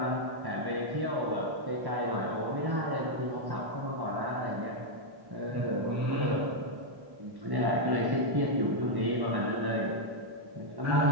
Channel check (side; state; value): left; late; 1.1 ms